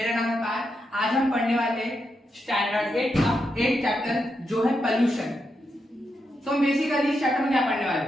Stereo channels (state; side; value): normal; both; correlation 0.84